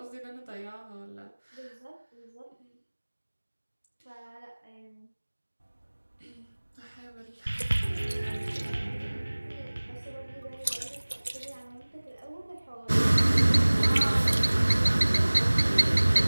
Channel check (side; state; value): both; inverted; correlation -1.00